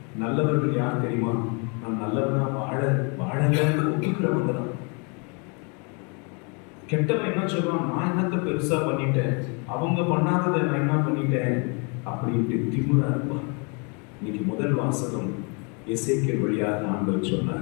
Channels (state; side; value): quieter; right; 34.3 dB